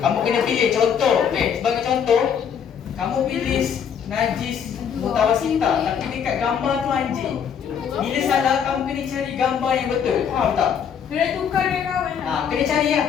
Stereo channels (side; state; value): right; quieter; 7.7 dB